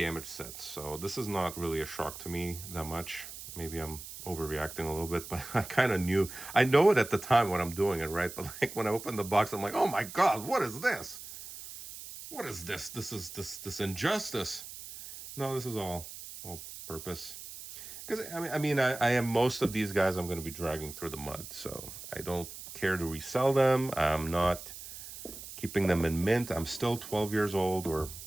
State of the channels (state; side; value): noise; right; hiss, 12 dB below the sound